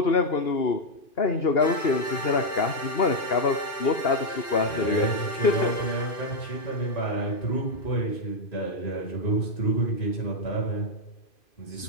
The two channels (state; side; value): late; right; 2.5 ms